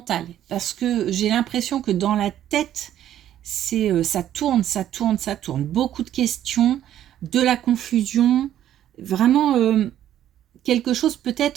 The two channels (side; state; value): left; quieter; 11.5 dB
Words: Parce que j'ai l'impression que dans la tête, ça tourne, ça tourne, ça tourne. Beaucoup de questions, de la confusion, vraiment quelque chose,